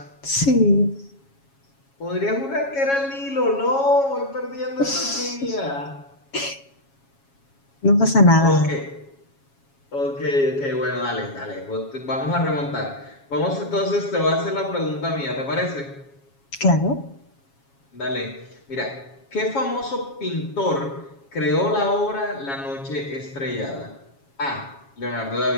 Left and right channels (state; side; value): late; right; 7.3 ms